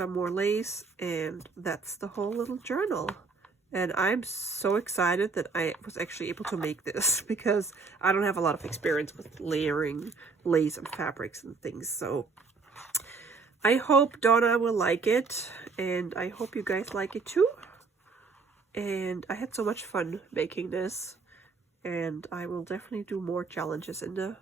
more lace, and that's the whole little journal. And I'm so excited that I was actually able to make this, because I don't have a lot of experience with layering lace and fabrics and things. So I hope Donna will like it, and I hope you guys like it too. And I had so much fun making this, and I will definitely do more challenges in the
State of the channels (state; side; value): quieter; left; 4.5 dB